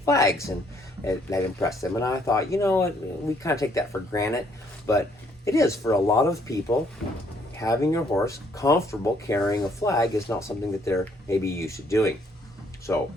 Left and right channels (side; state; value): both; normal; correlation 0.66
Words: and that impressed them. And I thought, you know, we kind of take that for granted, but it is for a lot of people. Having your horse comfortable carrying a flag is not something that they're maybe used to doing. So